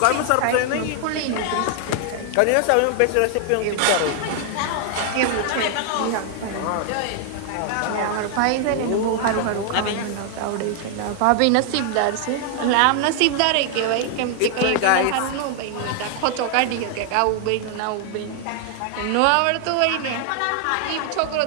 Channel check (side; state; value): both; different; correlation 0.00